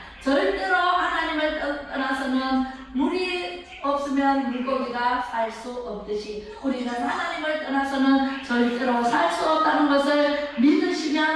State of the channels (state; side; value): identical; both; correlation 1.00